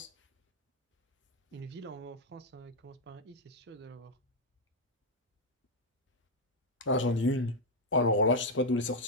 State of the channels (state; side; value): normal; both; correlation 0.01